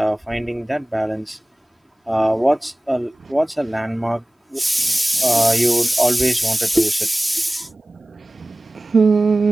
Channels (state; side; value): normal; both; correlation 0.98